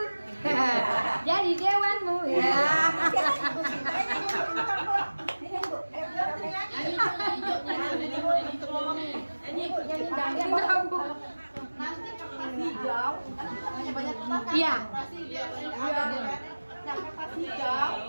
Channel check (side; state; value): both; inverted; correlation -1.00